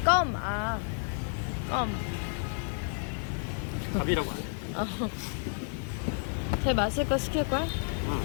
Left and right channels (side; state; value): right; silent; 57 dB below the other